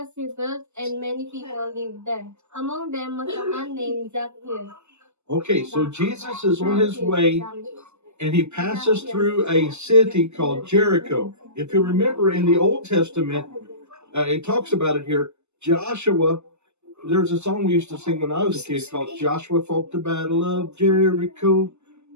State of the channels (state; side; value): late; left; 0.82 ms